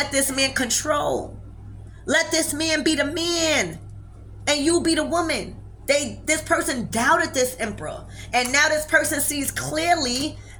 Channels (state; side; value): identical; both; correlation 1.00